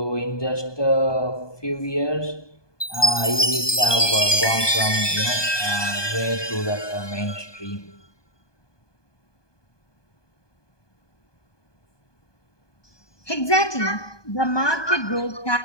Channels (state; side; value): late; right; 1.2 ms